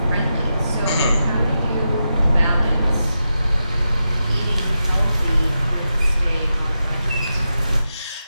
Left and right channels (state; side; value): inverted; both; correlation -0.89